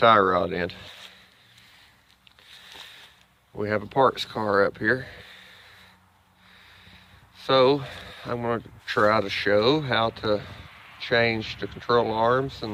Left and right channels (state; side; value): identical; both; correlation 1.00